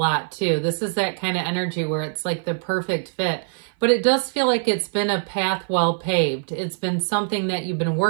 too. This is that kind of energy where it's like the perfect fit. But it does feel like it's been a path well paved. It's been something that you've been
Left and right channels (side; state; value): left; silent; 58 dB below the other